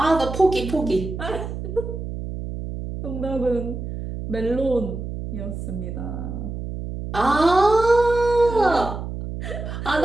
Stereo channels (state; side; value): noise; right; hum, 7 dB below the sound